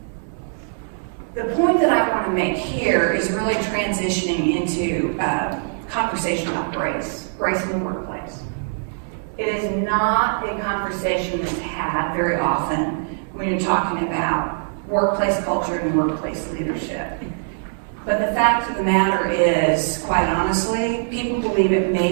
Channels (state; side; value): silent; left; 64 dB below the other